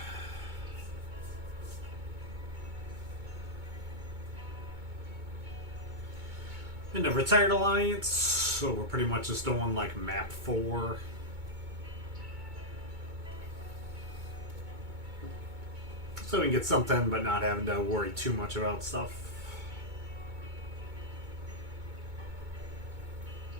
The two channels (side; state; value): left; late; 2.2 ms